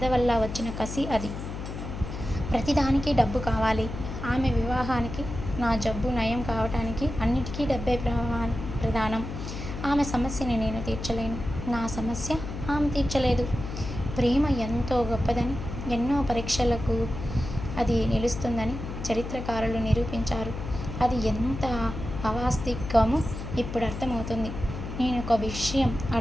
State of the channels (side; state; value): left; noise; hum, 7 dB below the sound